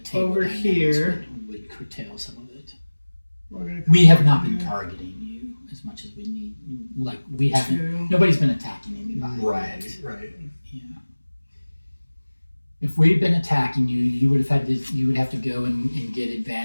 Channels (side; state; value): both; inverted; correlation -1.00